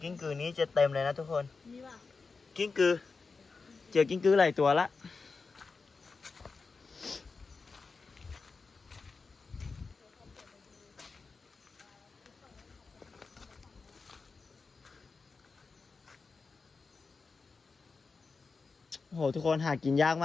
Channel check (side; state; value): right; quieter; 4.4 dB